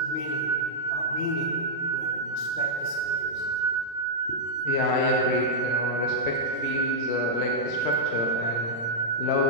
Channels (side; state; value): right; late; 35 ms